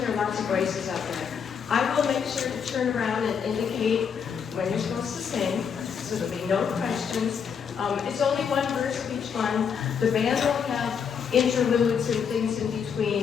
lots of voices out there. I will make sure to turn around and indicate when you're supposed to sing, so there'll be no questions. It's only one verse of each one. The band will have interludes and things in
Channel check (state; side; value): quieter; right; 6.9 dB